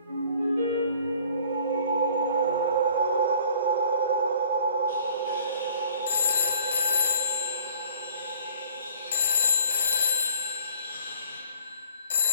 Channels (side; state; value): both; inverted; correlation -0.54